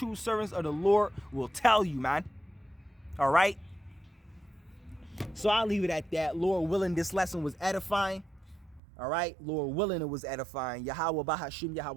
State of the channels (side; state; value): left; drops out; at 8.8 s